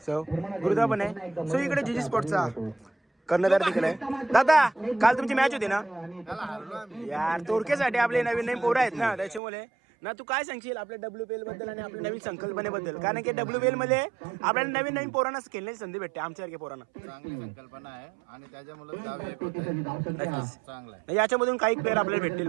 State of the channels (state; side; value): drops out; left; at 9.4 s